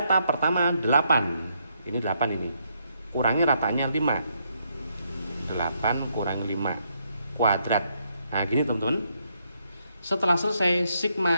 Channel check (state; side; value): inverted; both; correlation -0.76